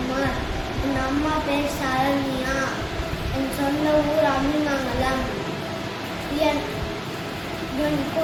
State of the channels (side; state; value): both; identical; correlation 1.00